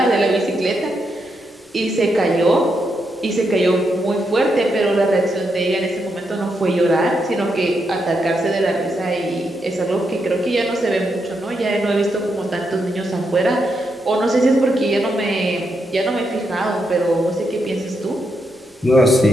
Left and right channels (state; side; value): normal; both; correlation 0.82